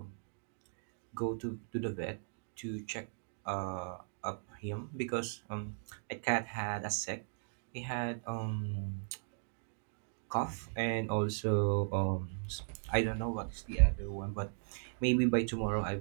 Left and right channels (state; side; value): silent; left; digital silence